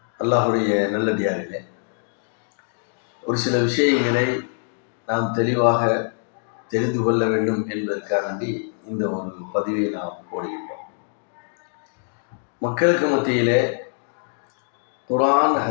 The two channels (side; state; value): right; silent; digital silence